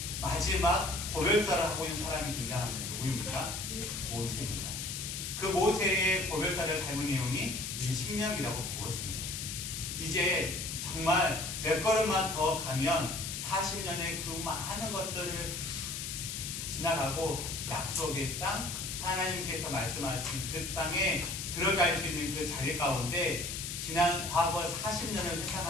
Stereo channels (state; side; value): noise; left; hiss, 5 dB below the sound